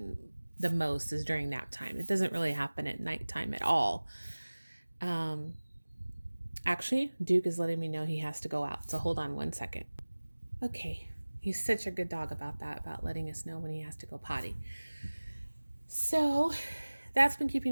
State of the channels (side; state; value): both; inverted; correlation -1.00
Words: the most, is during nap time. It doesn't really happen at nighttime at all. Actually, Duke is letting me know he has to go out, so hold on one second. Okay, he's such a good dog about that, about letting us know when he has to go potty. So that's been keeping